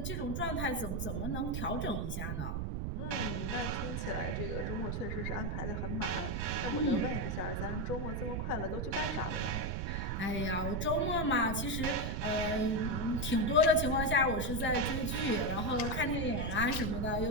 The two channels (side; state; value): right; noise; rumble, 2 dB below the sound